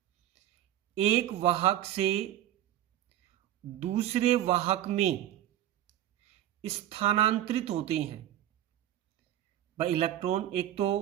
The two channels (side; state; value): left; quieter; 12.5 dB